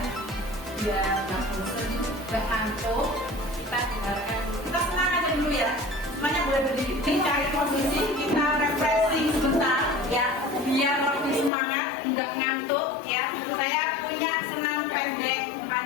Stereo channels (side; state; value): right; drops out; at 11.5 s